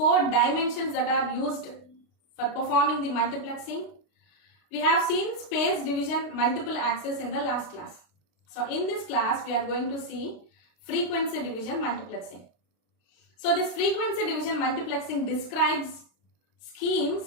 dimensions that are used for performing the multiplexing. We have seen space division multiple access in the last class. So in this class, we are going to see frequency division multiplexing. So this frequency division multiplexing describes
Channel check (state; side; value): late; right; 32 ms